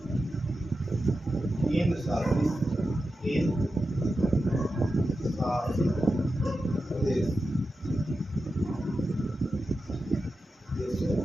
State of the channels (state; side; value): normal; both; correlation 0.91